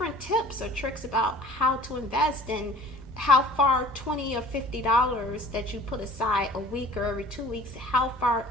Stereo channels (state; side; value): normal; both; correlation 0.46